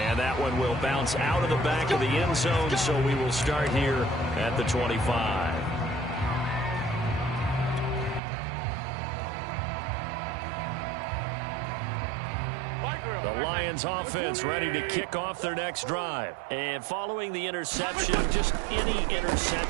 And that one will bounce out of the back of the end zone, so we will start here at the 25. The Lions offense ready to kick off their next drive. And following the interception, just any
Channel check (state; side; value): drops out; left; at 8.2 s